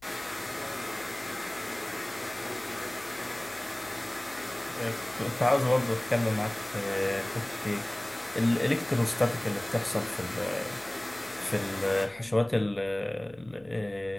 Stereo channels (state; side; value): noise; left; hum, 28 dB below the sound